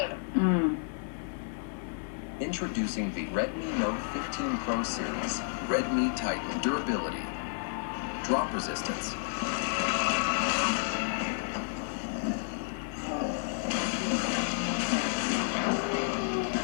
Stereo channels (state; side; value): silent; right; digital silence